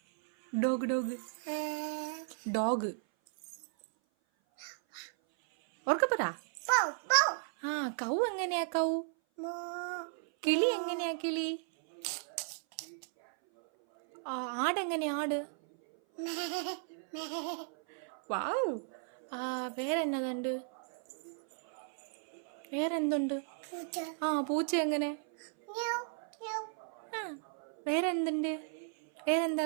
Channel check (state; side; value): silent; left; 54 dB below the other